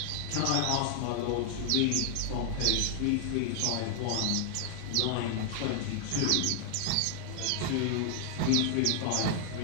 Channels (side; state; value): both; different; correlation -0.01